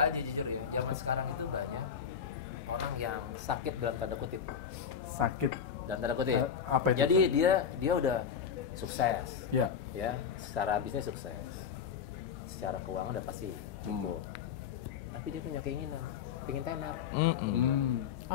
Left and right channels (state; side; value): quieter; right; 7.4 dB